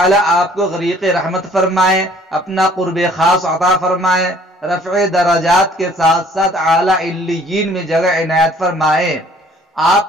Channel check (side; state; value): both; normal; correlation 0.56